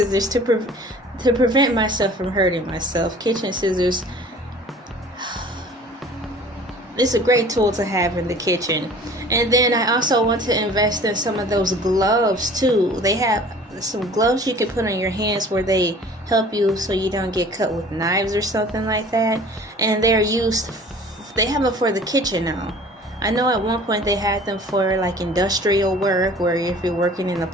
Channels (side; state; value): both; normal; correlation 0.47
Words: to prevent myself from hurting myself. Kitchen scissors, it's a great tool to have in the kitchen. And then I also want to invest in some of those gloves too. They have some gloves you can put on your hands where they help you so you don't get cut with knives or something like that. And they have them for the kitchen now. I know at one point they had them for like industrial work, where if you're working in a